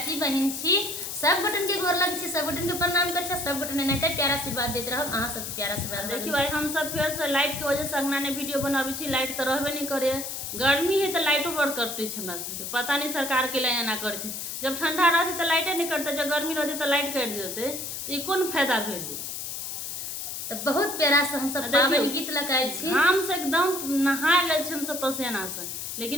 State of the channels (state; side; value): noise; left; hiss, 6 dB below the sound